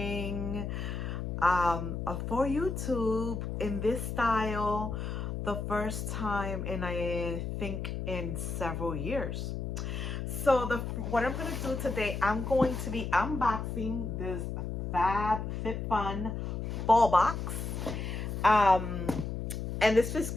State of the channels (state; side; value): noise; left; hum, 4 dB below the sound